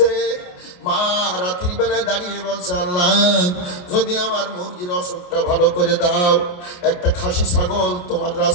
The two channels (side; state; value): right; late; 29 ms